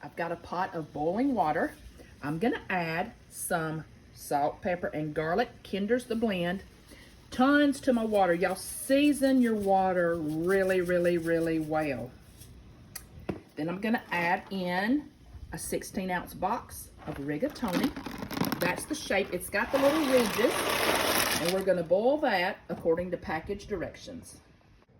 I've got a pot of boiling water. I'm gonna add some salt, pepper, and garlic. Kinder's the blend. Tons to my water. Y'all season your water really, really, really well. Then I'm gonna add in a 16-ounce box of rigatoni. That's the shape. It's got the little ridges. And we're gonna boil that according to package directions.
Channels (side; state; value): both; identical; correlation 1.00